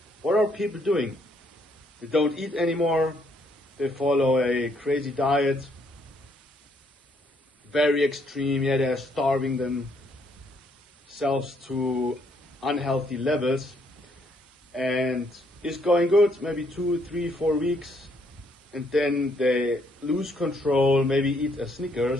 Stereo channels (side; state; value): both; normal; correlation 0.70